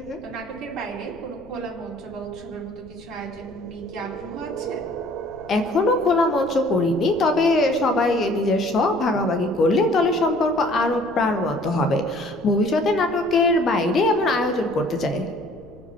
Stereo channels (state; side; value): noise; left; rumble, 24 dB below the sound